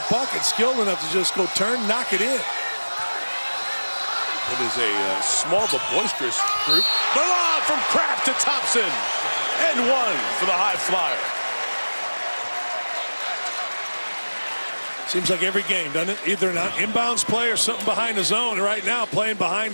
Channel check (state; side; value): inverted; both; correlation -1.00